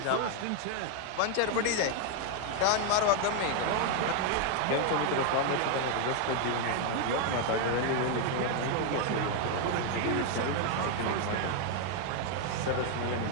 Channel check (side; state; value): both; different; correlation 0.01